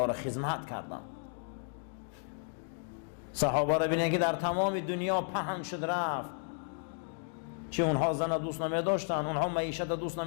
را خدمت کردند. صحابه را بینید که در تمام دنیا پهن شد رفت. چه اونها زن دوست نمی داشتن، اونها معیشت دوست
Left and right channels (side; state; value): right; silent; digital silence